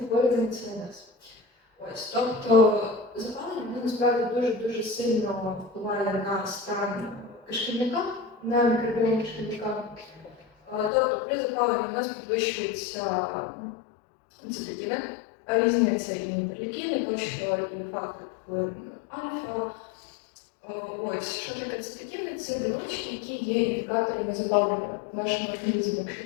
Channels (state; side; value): drops out; right; at 10.9 s